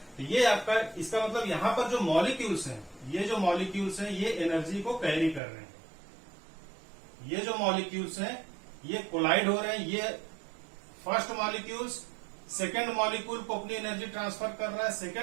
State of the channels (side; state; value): left; drops out; at 5.4 s